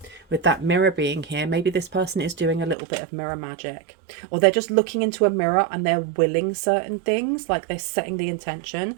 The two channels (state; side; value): drops out; left; at 2.8 s